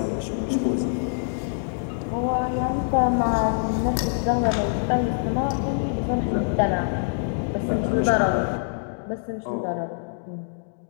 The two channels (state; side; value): silent; right; digital silence